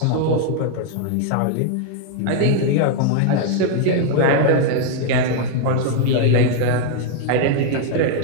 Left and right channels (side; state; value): both; different; correlation 0.00